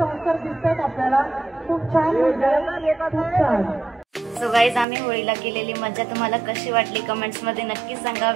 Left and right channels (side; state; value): left; drops out; at 4.9 s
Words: दिसतात आपल्याला. खूप छान. सो गाईज, आम्ही होळीला केलेली मजा तुम्हाला कशी वाटली कमेंट्स मध्ये नक्की सांगा.